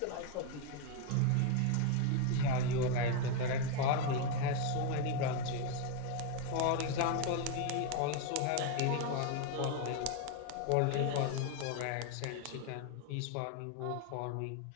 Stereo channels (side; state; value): both; different; correlation 0.01